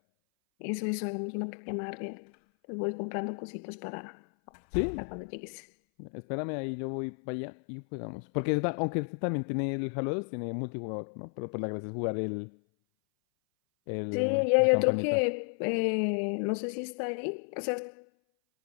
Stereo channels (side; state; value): right; silent; 56 dB below the other